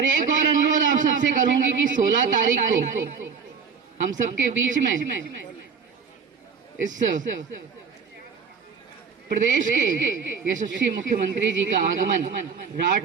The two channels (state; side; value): quieter; left; 6.0 dB